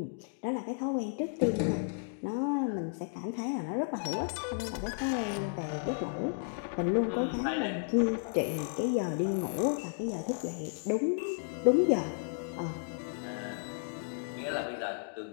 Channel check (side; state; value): right; silent; digital silence